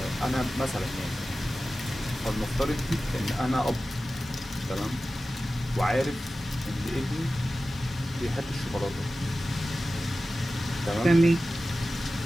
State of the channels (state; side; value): normal; both; correlation 0.95